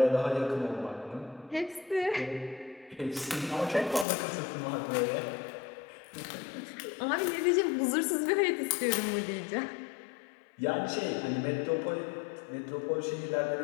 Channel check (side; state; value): right; drops out; at 4.0 s